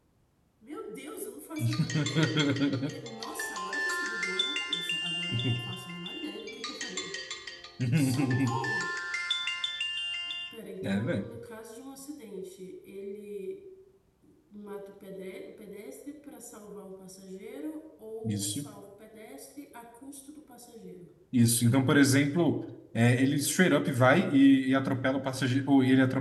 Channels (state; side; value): identical; both; correlation 1.00